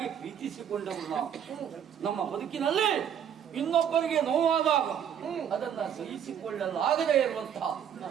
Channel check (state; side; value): quieter; left; 8.9 dB